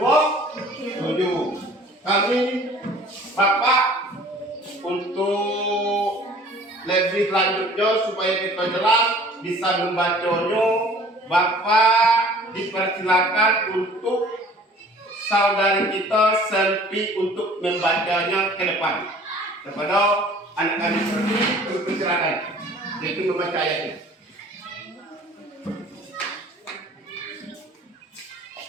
Kami Bapak untuk lebih lanjutnya supaya kita jelas bisa membacanya, Bapak dipersilakan untuk saudari kita Selvi untuk membacanya ke depan kepada anak-anak seperti dipersilakan yaitu membaca ayatnya.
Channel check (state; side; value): normal; both; correlation 0.50